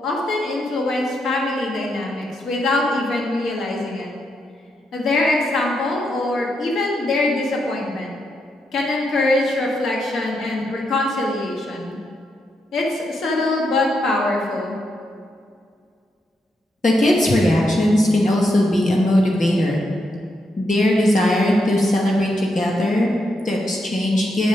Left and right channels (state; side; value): normal; both; correlation 0.82